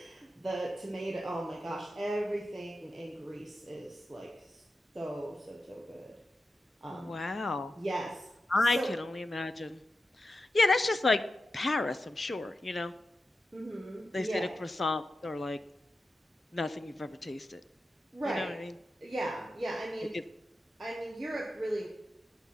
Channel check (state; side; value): normal; both; correlation 0.91